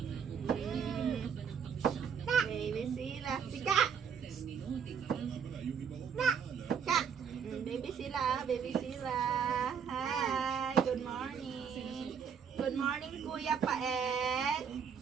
Baby sila. Sika. Ka. Baby sila, baby sila. Hi, good morning. Good morning, Kuya Paet.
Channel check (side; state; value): left; quieter; 7.0 dB